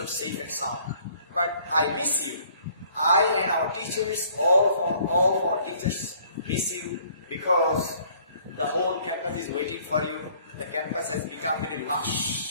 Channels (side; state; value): both; inverted; correlation -0.59